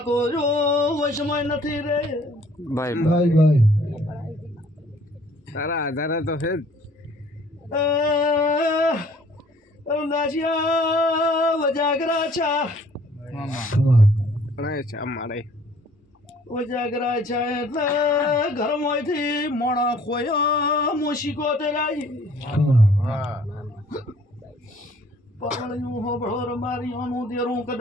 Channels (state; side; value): normal; both; correlation 0.57